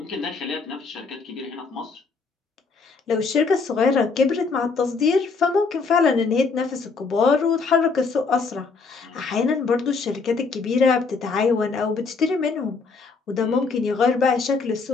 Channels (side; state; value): right; quieter; 4.5 dB